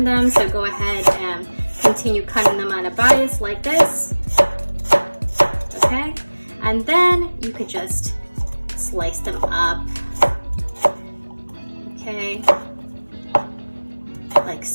them. So go ahead and continue cutting them on a bias like this. Okay, and then you could just slice them up. Okay, like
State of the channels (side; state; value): both; inverted; correlation -1.00